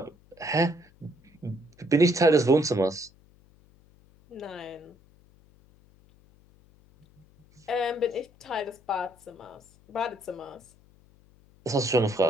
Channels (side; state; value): left; noise; hum, 29 dB below the sound